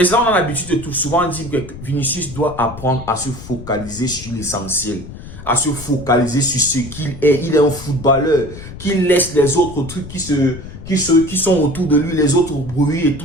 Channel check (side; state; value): left; noise; rumble, 13 dB below the sound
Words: ça, on a l'habitude de tout souvent dire que Vinicius doit apprendre à se focaliser sur l'essentiel. À se focaliser sur ce qu'il est. Il est un footballeur. Qu'il laisse les autres trucs qui sont autour de lui, les autres bruits et